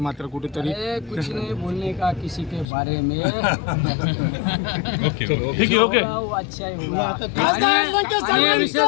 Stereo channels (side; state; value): right; drops out; at 2.7 s